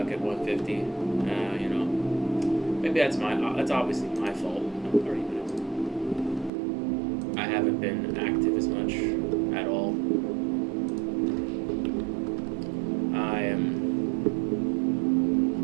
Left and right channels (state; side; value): drops out; left; at 6.5 s